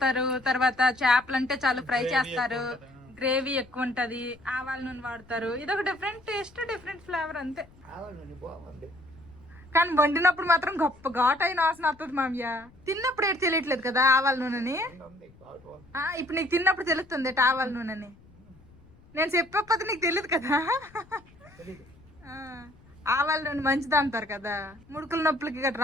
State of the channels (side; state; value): left; noise; rumble, 26 dB below the sound